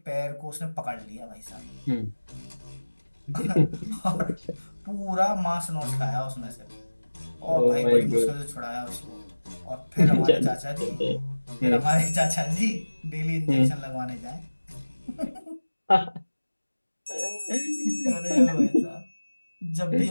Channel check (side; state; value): both; inverted; correlation -1.00